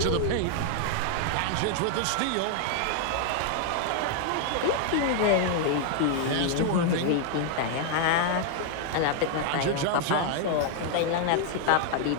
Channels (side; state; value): both; different; correlation 0.00